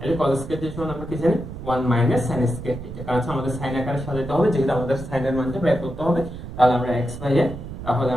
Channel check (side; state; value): right; noise; rumble, 10 dB below the sound